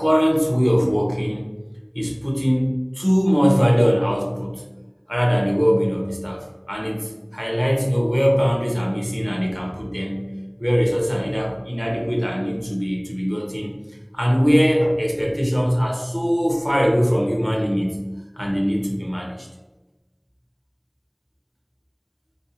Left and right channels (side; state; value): both; identical; correlation 1.00